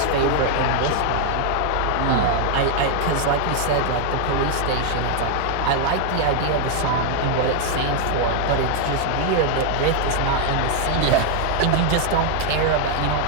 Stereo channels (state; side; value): different; both; correlation 0.00